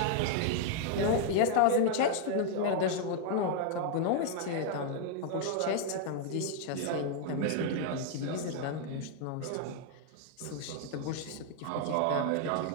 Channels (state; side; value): different; both; correlation 0.00